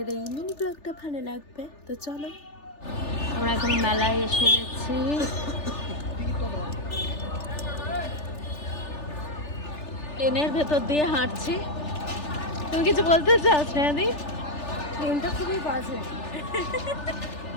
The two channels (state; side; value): late; right; 3.4 ms